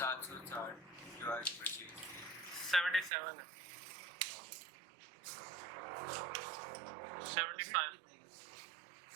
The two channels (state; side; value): drops out; left; at 3.1 s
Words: डिवाइड पर 77 है 75